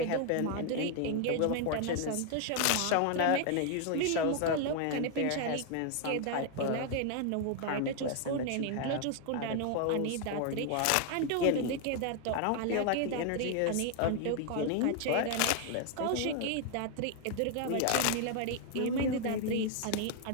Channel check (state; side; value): different; both; correlation 0.00